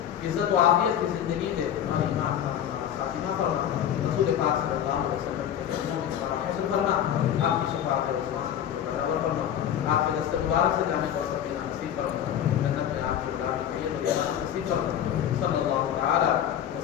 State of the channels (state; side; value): quieter; right; 10.0 dB